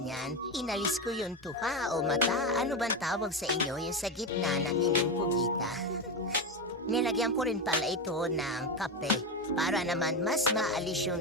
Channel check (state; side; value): normal; both; correlation 0.14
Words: Inalis ko yung tuka o mata. Ano bang tawag sa inyo yung sa gitna ng inyong pugita? Nilagyan ko rin pala ito ng kape para naman mas maalis yung